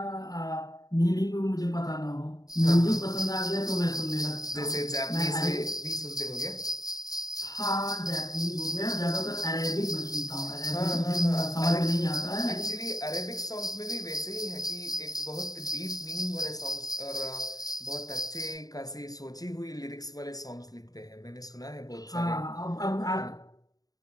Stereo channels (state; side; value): late; right; 0.18 ms